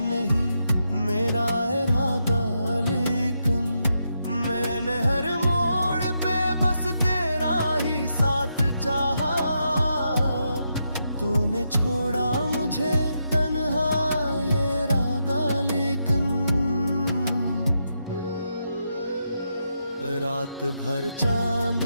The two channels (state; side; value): inverted; both; correlation -0.82